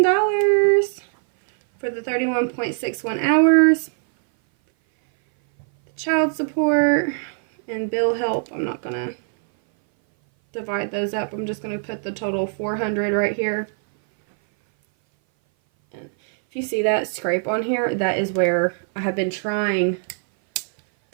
for the 31.61 hours. The child support and bill help, I'm not gonna divide those up. I'm just gonna put the total 400 right here. And if you see that scrape on here, that is where I have been trying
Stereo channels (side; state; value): left; silent; 59 dB below the other